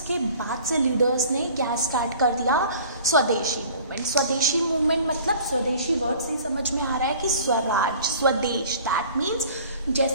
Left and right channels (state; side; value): inverted; both; correlation -0.47